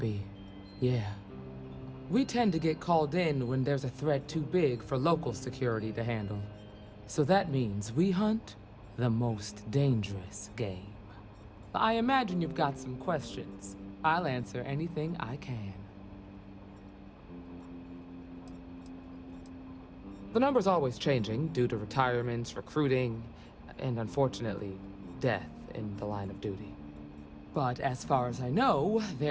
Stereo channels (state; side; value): identical; both; correlation 1.00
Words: yeah. We tend to get called in when there's a threat too big for local security to handle. So that means we hunt the most dangerous game. I imagine you've got some questions. I'll answer anything I can. The number's always changing due to retirements, recruiting, and unfortunately, death in the line of duty. But as far as I know,